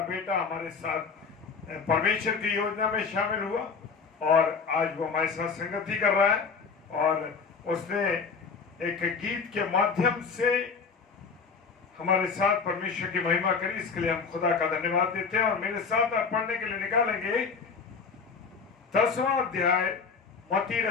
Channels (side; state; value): right; quieter; 5.3 dB